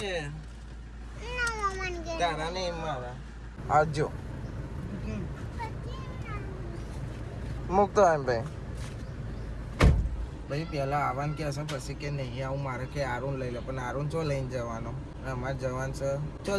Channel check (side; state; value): both; identical; correlation 1.00